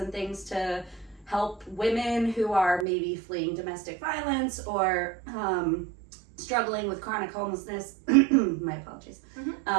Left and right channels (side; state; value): left; drops out; at 2.9 s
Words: things to help women who are maybe fleeing domestic violence or struggling with chronic homelessness. My apologies.